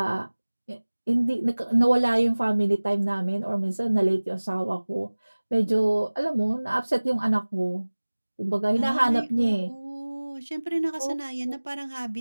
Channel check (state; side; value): inverted; both; correlation -1.00